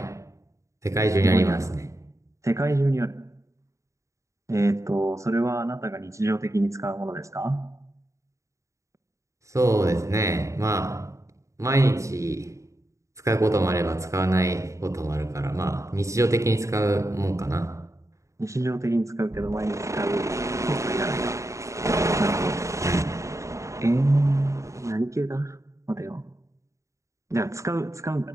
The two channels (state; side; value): late; left; 0.15 ms